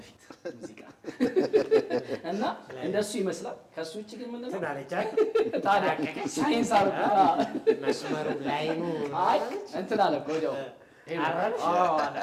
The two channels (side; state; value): both; identical; correlation 1.00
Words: ፊት ሙዚቃ እና እንደሱ ይመስላል። ከሱ ውጪ ግን ምንድን ነው ታዲያ ሳይንስ አርጋ መስመሩ ላይ ነው እንትን አለ እኮ ወዲያው